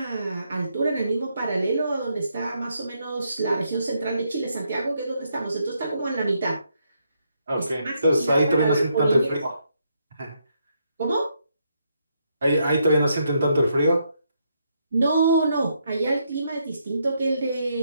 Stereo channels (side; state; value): both; inverted; correlation -0.77